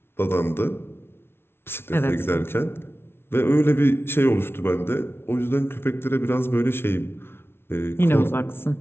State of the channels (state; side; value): late; right; 0.12 ms